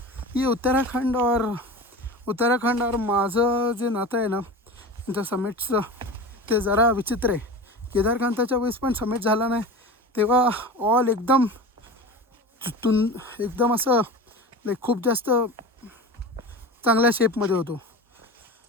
ये उत्तराखंड और माझं जे नातं आहे ना त्यांच्या समिट्सचं, ते जरा विचित्र आहे. केदारकांताच्या वेळेस पण समिट झाला नाही तेव्हा ऑल एकदम असं लाईक खूप जास्त चांगल्या शेपमध्ये होतो.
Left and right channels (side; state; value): both; normal; correlation 0.31